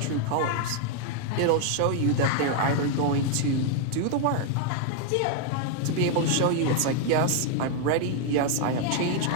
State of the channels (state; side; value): different; both; correlation 0.00